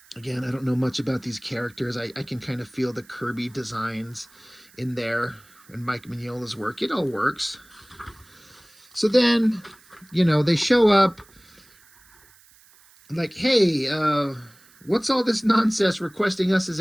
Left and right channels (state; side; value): noise; right; hiss, 27 dB below the sound